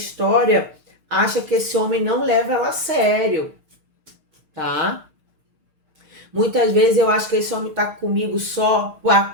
acha que esse homem não leva ela a sério, tá? Muitas vezes eu acho que esse homem tá comigo só por a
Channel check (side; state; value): left; late; 6.6 ms